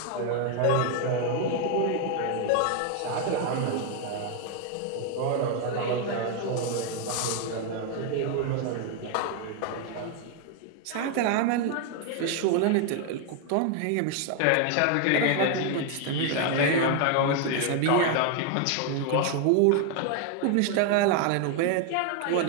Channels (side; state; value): both; different; correlation 0.01